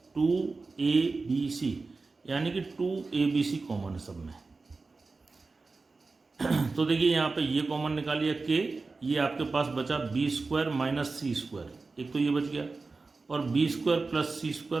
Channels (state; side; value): quieter; left; 3.9 dB